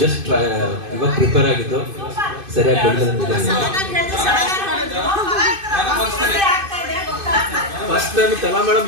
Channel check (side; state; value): left; late; 2.5 ms